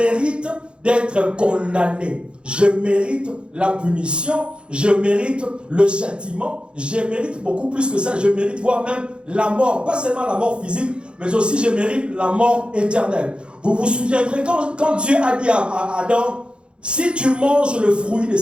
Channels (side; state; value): left; late; 0.056 ms